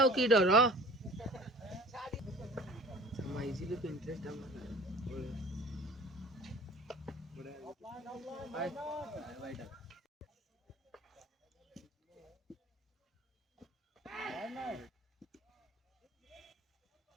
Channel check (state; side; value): normal; both; correlation 0.45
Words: की डर समाइजिले तो इंटरेस्ट हम